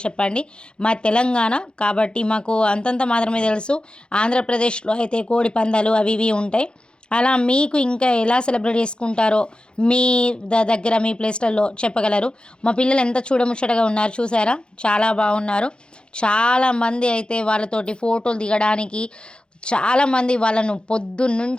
చెప్పండి. మా తెలంగాణ కాబట్టి మాకు అంతంత మాత్రమే తెలుసు. ఆంధ్రప్రదేశ్లో అయితే కోడి పందాలు అవి ఇవి ఉంటాయి. అలా మీకు ఇంకా ఎలా సెలబ్రేట్ చేసుకుంటారో మీ దగ్గర మీ ప్లేస్లలో చెప్పగలరు. మా పిల్లలు ఎంత చూడముచ్చటగా ఉన్నారు చూసారా, చాలా బాగున్నారు. చాలామంది అయితే వాళ్ళతోటి ఫోటోలు దిగడానికి చాలామంది వాళ్ళను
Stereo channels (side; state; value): right; late; 0.051 ms